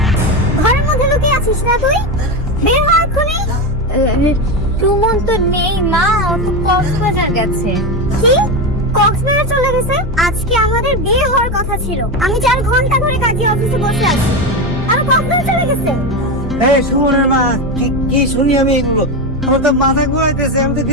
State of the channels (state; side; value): normal; both; correlation 0.15